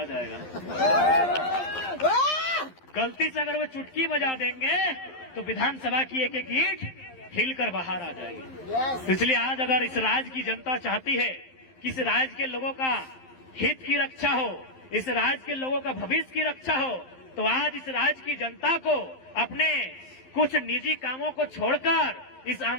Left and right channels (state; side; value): late; right; 11 ms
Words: जाएगा। गलती से अगर वो चुटकी बजा देंगे तो विधानसभा की एक एक ईंट हिलकर बाहर आ जाएगी। इसलिए आज अगर इस राज्य की जनता चाहती है कि इस राज्य के लोगों का हित की रक्षा हो, इस राज्य के लोगों का भविष्य की रक्षा हो, तो आज इस राज्य की जनता को अपने कुछ निजी कामों को छोड़कर इस